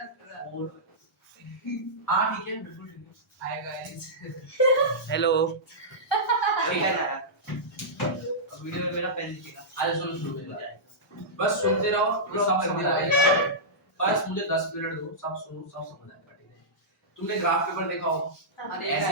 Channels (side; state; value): both; normal; correlation -0.14